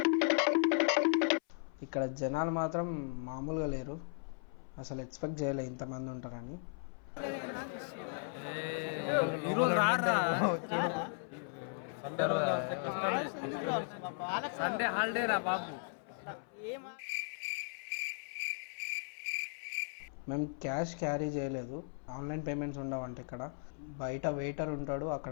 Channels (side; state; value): right; silent; 53 dB below the other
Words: ఇక్కడ జనాలు మాత్రం మామూలుగా లేరు. అసలు ఎక్స్పెక్ట్ చేయలే ఇంతమంది ఉంటారని. సండే హాలిడే రా బాబు. మేము క్యాష్ క్యారీ చేయలేదు, ఆన్లైన్ పేమెంట్స్ ఉండవంట ఇక్కడ. బయట వెయిటర్ ఉంటాడు, అక్కడ